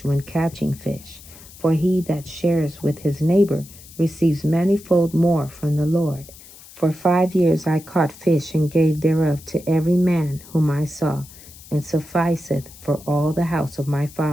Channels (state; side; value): noise; left; hiss, 20 dB below the sound